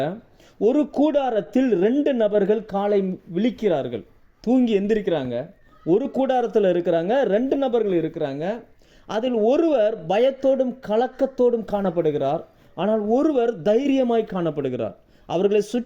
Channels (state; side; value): identical; both; correlation 1.00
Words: ஒரு கூடாரத்தில் 2 நபர்கள் காலை விழிக்கிறார்கள். தூங்கி எந்திரிக்கிறாங்க. ஒரு கூடாரத்தில் இருக்கிறாங்க, 2 நபர்கள் இருக்கிறாங்க. அதில் ஒருவர் பயத்தோடும் கலக்கத்தோடும் காணப்படுகிறார், ஆனால் ஒருவர் தைரியமாய் காணப்படுகிறார். அவர்களை